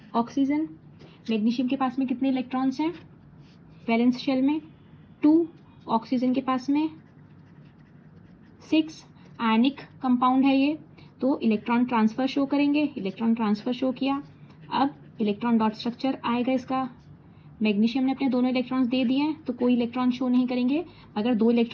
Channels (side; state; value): both; identical; correlation 1.00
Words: ऑक्सीजन। मैग्नीशियम के पास में कितने इलेक्ट्रॉन्स हैं वैलेंस शेल में 2, ऑक्सीजन के पास में 6। आयनिक कंपाउंड है ये, तो इलेक्ट्रॉन ट्रांसफर शो करेंगे, इलेक्ट्रॉन ट्रांसफर शो किया। अब इलेक्ट्रॉन डॉट स्ट्रक्चर आएगा इसका। मैग्नीशियम ने अपने दोनों इलेक्ट्रॉन्स दे दिए हैं तो कोई इलेक्ट्रॉन शो नहीं करेंगे। अगर 2